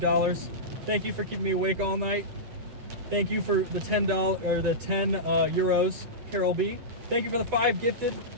Thank you for keeping me awake all night. Thank you for the $10 or the 10 euros, Carol B. Thank you for the 5 gifted.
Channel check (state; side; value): late; left; 8.2 ms